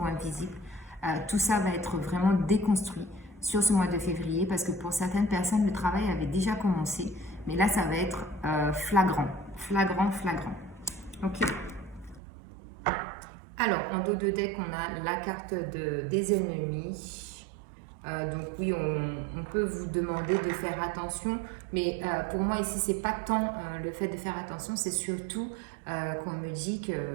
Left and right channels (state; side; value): drops out; left; at 12.2 s